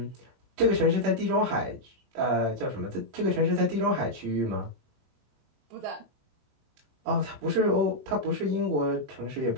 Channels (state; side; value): late; left; 21 ms